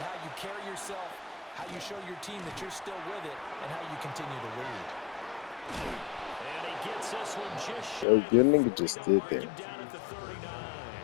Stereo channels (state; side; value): drops out; right; at 8.1 s